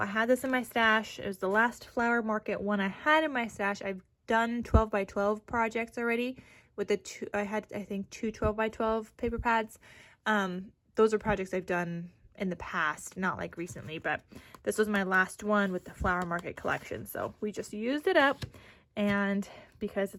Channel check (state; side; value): identical; both; correlation 1.00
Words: had this in my stash. It was the last flower market one I had in my stash. I've done 12 by 12 projects already with the two. I had, I think, 2 12 by 12 paper pads. Those are projects I've done in the past, not like recently, but this was my last one with the flower market collection. So we just used it up, and because